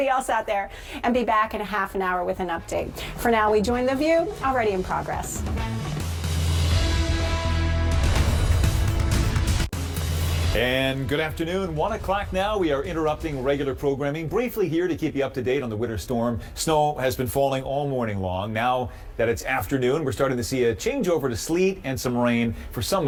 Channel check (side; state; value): both; identical; correlation 1.00